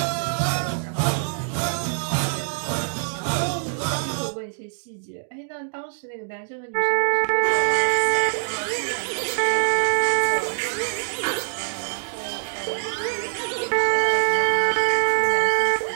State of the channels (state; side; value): silent; left; digital silence